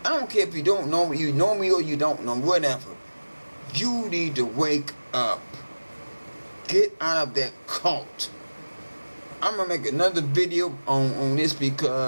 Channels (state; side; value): inverted; both; correlation -1.00